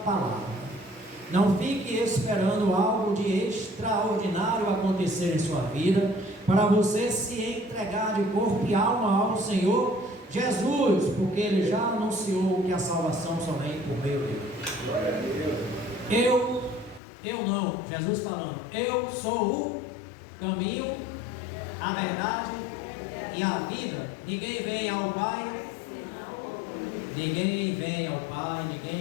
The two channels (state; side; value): drops out; right; at 17.0 s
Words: palavra. Não fique esperando algo de extraordinário acontecer em sua vida para você se entregar de corpo e alma ao Senhor Jesus, porque Ele já anunciou que a salvação somente por meio dele. Eu não, Jesus falando, eu sou o caminho, a verdade e a vida. Ninguém vem ao Pai, ninguém